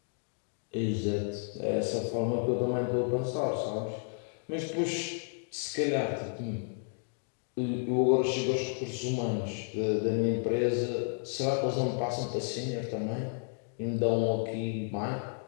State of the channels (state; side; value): silent; right; 56 dB below the other